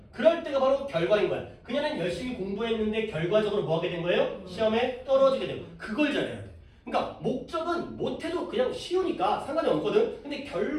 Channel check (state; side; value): identical; both; correlation 1.00